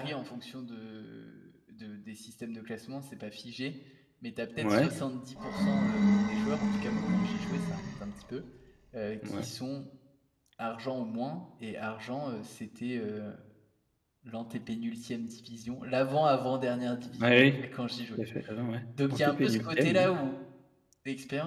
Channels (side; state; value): both; identical; correlation 1.00